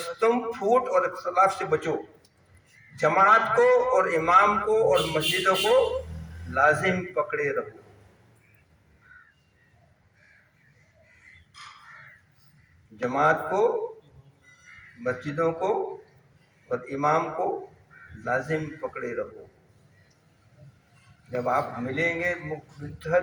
تم پھوٹ اور اختلاف سے بچو، جماعت کو اور امام کو اور مسجدوں کو لازم پکڑے رہو۔ جماعت کو، مسجدوں کو اور امام کو لازم پکڑے رہو۔ جب آپ ملیں گے،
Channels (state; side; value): identical; both; correlation 1.00